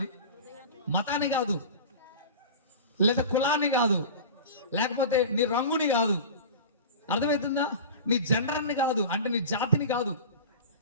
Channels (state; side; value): inverted; both; correlation -0.33